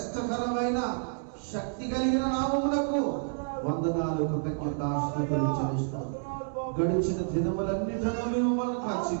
శక్తి కలిగిన నామమునకు వందనాలు, కృతజ్ఞతాస్తుతులు చెల్లిస్తాం. గడిచిన దినములన్నిటిలో మేము మనం కాచి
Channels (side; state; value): left; silent; 58 dB below the other